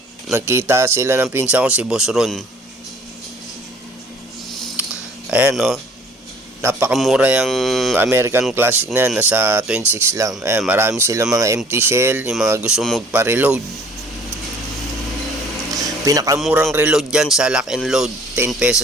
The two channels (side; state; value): both; normal; correlation 0.54